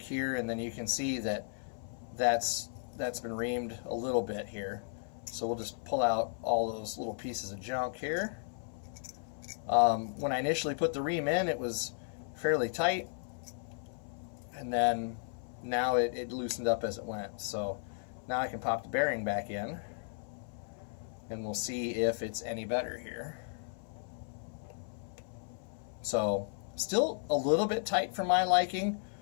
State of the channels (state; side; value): silent; right; 55 dB below the other